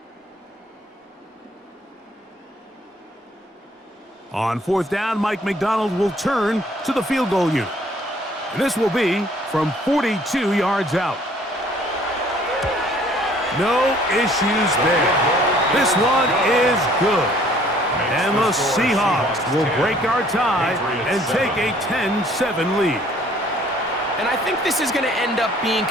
On 4th down, Mike McDonald will turn to the field goal unit. And this will be from 42 yards out. No issues there. This one is good. And the Seahawks will break our tie and take a 10-7 lead. And I think this is going to end up being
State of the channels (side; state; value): both; normal; correlation 0.58